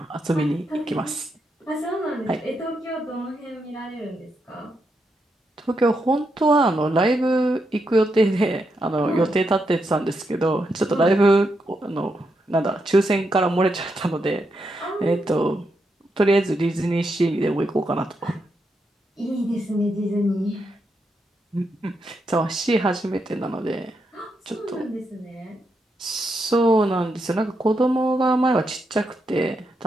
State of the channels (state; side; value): normal; both; correlation 0.82